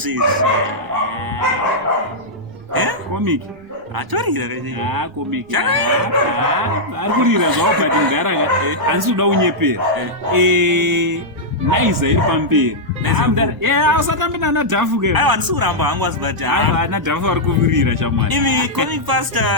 comic atorira comic ari kurira zvavo but ngaraka handisi kuda unyepera naiza iri pamberi usatambi nana dhafu ke aiwa handisi kuramba hangu azibati ana dhafu ari kuvirira chamwari imi comic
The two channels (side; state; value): both; normal; correlation -0.08